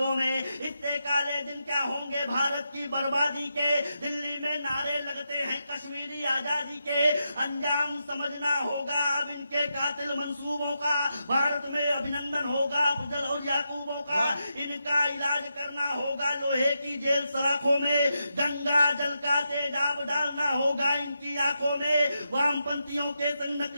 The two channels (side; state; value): both; inverted; correlation -0.85